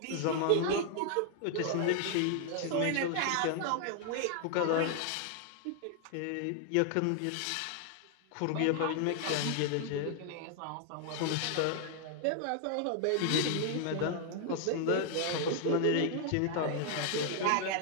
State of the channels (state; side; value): different; both; correlation 0.00